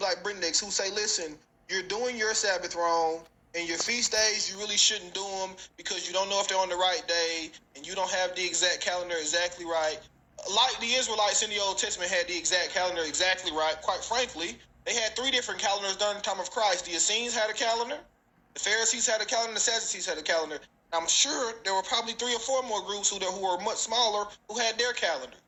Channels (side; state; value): both; identical; correlation 1.00